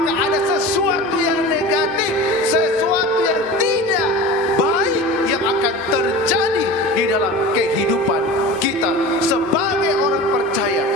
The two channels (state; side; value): normal; both; correlation 0.34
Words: ada sesuatu yang negatif, sesuatu yang tidak baik yang akan terjadi di dalam kehidupan kita sebagai orang percaya